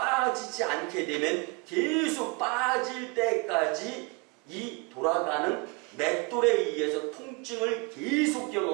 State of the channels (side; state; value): left; quieter; 29.1 dB